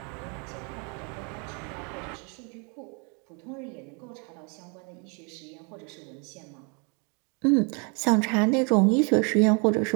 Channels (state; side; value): quieter; left; 35.3 dB